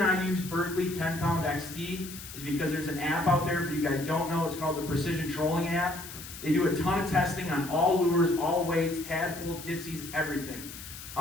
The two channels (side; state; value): left; noise; hiss, 12 dB below the sound